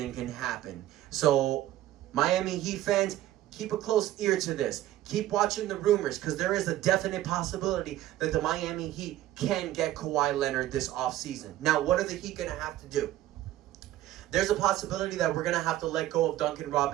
can happen. So, Miami Heat fans, keep a close ear to this. Keep watching the rumors, because there is a definite possibility that the Miami Heat can get Kawhi Leonard this offseason. Now, what are the Heat going to have to do? There's a possibility that we're going to have to let go of Duncan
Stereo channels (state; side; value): quieter; left; 14.2 dB